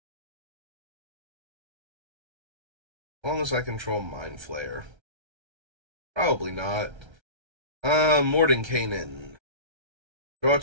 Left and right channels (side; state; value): left; late; 1.3 ms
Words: As long as I control Mind Flayer. Probably not. Mordenkainen. Draw